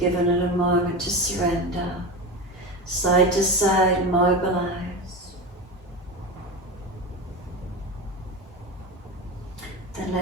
it a moment to surrender. Side to side, mobilize.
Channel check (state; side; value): normal; both; correlation 0.23